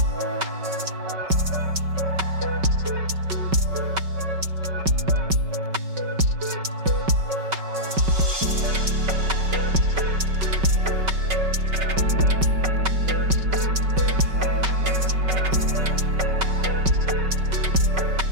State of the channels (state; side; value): late; left; 5.3 ms